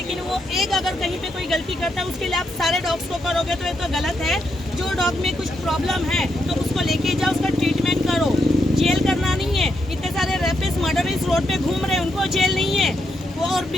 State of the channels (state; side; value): normal; both; correlation 0.81